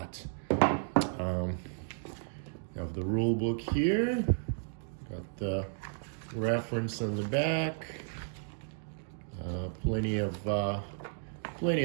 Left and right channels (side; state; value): left; silent; digital silence